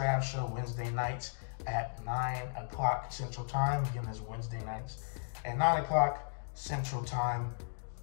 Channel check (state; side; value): silent; right; digital silence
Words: show Wednesday nights at 9 o'clock Central Time. Again, that's Wednesday nights at 9 o'clock Central Time.